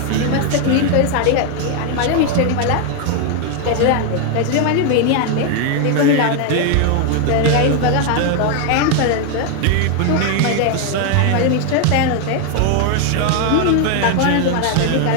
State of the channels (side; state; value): both; different; correlation 0.01